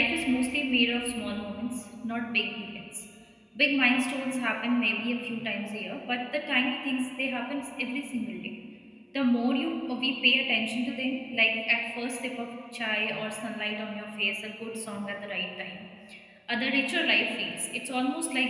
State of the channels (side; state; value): both; identical; correlation 1.00